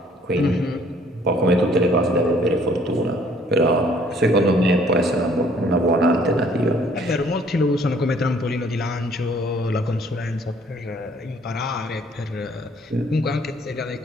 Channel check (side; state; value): both; normal; correlation 0.60